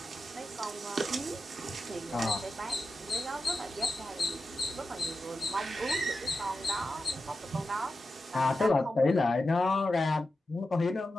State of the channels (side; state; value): both; normal; correlation 0.91